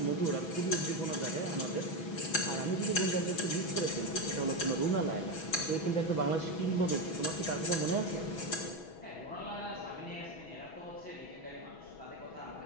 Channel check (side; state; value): right; late; 6.1 ms